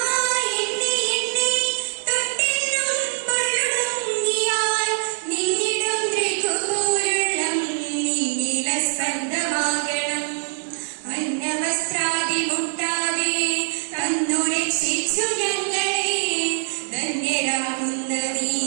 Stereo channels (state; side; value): silent; left; 63 dB below the other